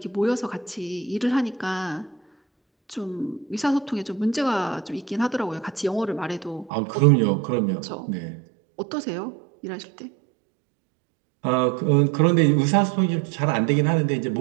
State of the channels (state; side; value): drops out; left; at 6.7 s